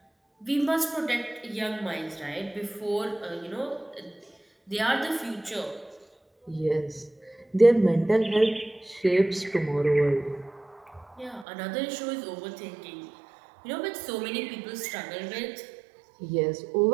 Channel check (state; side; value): drops out; left; at 11.5 s